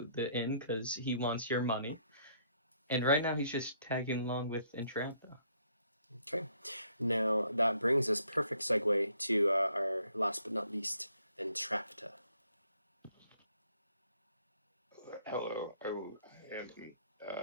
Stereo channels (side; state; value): both; inverted; correlation -0.67